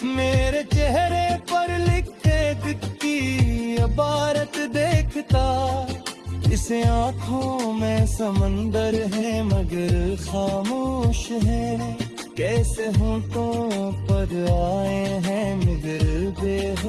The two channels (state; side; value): identical; both; correlation 1.00